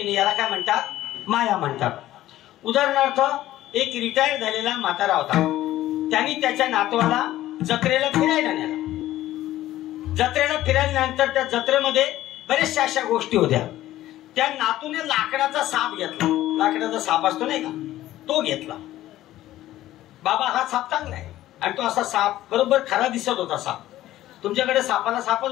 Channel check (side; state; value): right; quieter; 14.5 dB